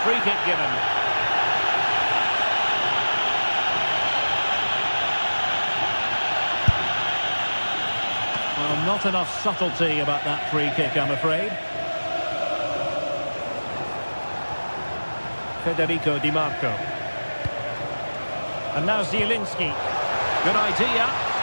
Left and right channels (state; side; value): inverted; both; correlation -1.00